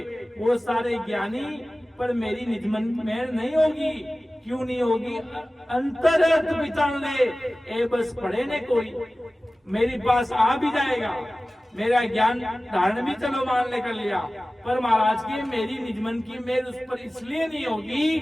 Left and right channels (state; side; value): normal; both; correlation 0.97